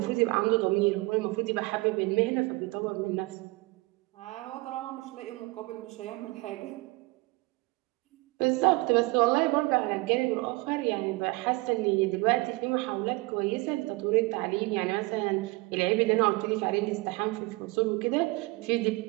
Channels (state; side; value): quieter; left; 24.1 dB